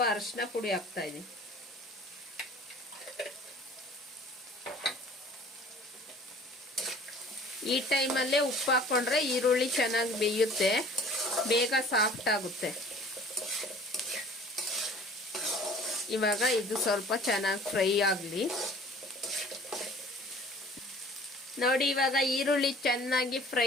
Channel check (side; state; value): both; normal; correlation 0.49